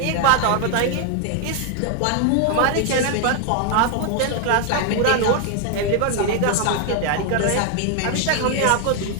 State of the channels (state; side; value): different; both; correlation 0.00